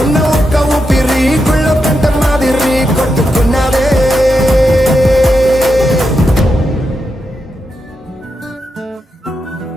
ఉన్న ఒక్క ఊపిరి గుళ్ళో గంట మాదిరి కొట్టుకున్నదే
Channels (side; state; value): both; normal; correlation 0.86